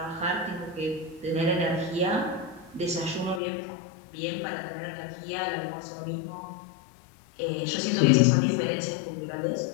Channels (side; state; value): right; drops out; at 3.4 s